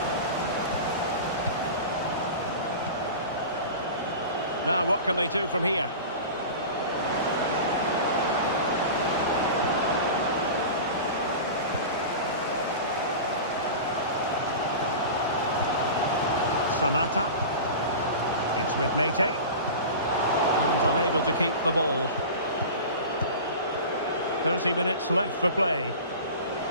Now, what can they do from here? Samata. It's with Mete. And unable to keep the ball. 30 minutes left for play.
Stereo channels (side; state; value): both; inverted; correlation -0.33